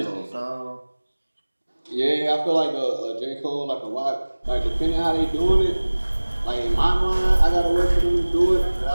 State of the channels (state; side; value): inverted; both; correlation -1.00